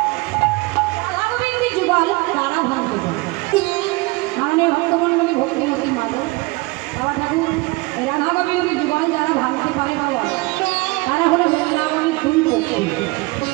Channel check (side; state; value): left; quieter; 23.7 dB